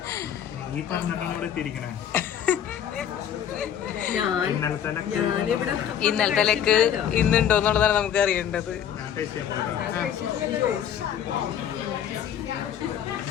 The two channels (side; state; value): right; quieter; 9.3 dB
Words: ഇന്നലത്തെ ലെക്ക് ഇന്നുണ്ടോ എന്നുള്ളതാണ് നമുക്ക് അറിയേണ്ടത്.